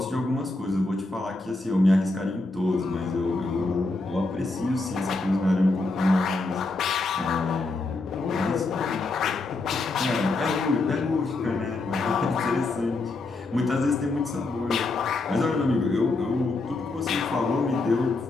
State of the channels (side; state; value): right; quieter; 3.3 dB